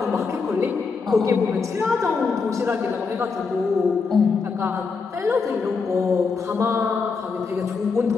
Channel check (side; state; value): right; quieter; 4.9 dB